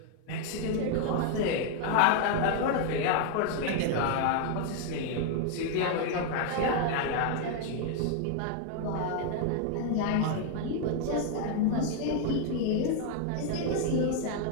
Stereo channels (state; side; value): different; both; correlation 0.00